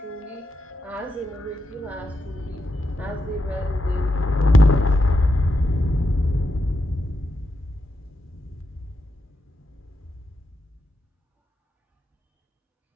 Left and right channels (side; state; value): both; normal; correlation 0.85